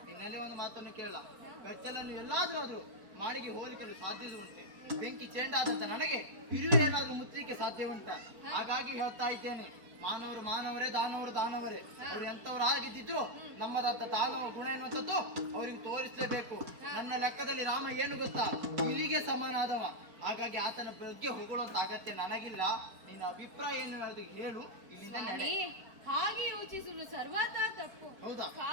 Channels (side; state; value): left; late; 4.4 ms